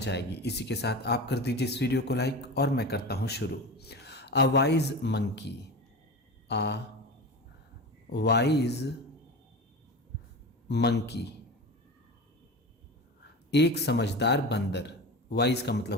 आएगी। इसी के साथ आप कर दीजिए इस वीडियो को लाइक और मैं करता हूँ शुरू। A wise monkey. A wise monkey, एक समझदार बंदर। वाइज का मतलब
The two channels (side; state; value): both; normal; correlation 0.27